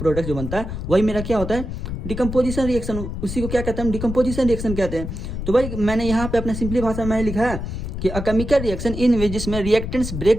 जो बनता है, वही मेरा क्या होता है, डिकम्पोजिशन रिएक्शन। उसी को क्या कहते हैं, डिकम्पोजिशन रिएक्शन कहते हैं। तो भाई मैंने यहाँ पे अपने सिंपली भाषा में लिखा है कि अ केमिकल रिएक्शन इन विच, जिसमें रिएक्टेंट्स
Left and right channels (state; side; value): noise; left; rumble, 6 dB below the sound